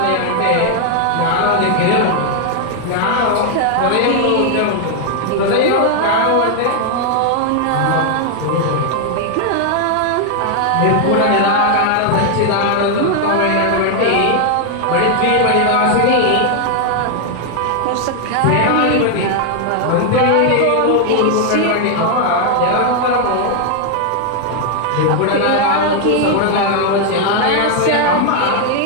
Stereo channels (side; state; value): both; different; correlation 0.00